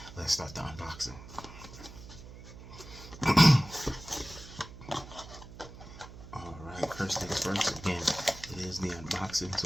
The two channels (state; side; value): noise; right; hum, 15 dB below the sound